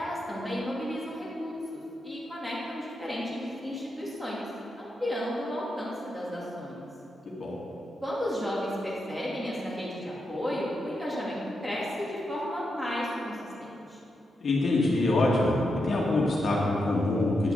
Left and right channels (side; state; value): both; normal; correlation 0.85